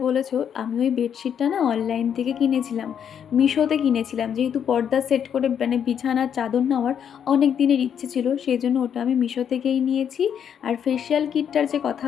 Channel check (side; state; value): right; quieter; 8.4 dB